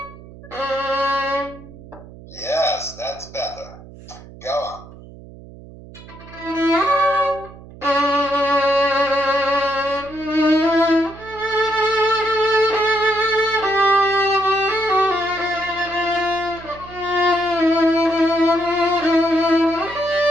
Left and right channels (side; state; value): right; noise; hum, 18 dB below the sound